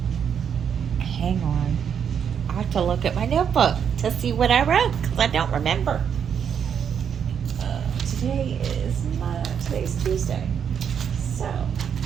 Hang on. I have to look at my notebook to see what I wrote because I don't remember. Today's Tuesday, so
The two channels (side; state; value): left; quieter; 7.8 dB